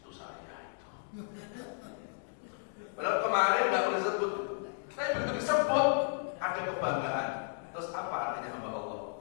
saya itu. Padahal kemarin nggak boleh disebut. Tapi begitu disebut ada kebanggaan. Terus apa artinya hamba Allah?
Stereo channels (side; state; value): right; silent; digital silence